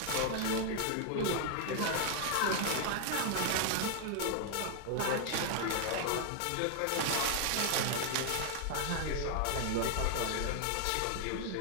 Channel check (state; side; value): different; both; correlation 0.00